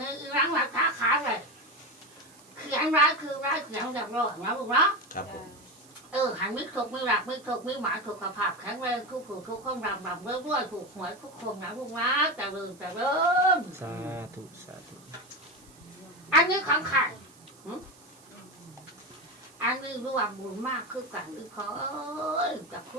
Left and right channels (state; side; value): noise; right; hiss, 25 dB below the sound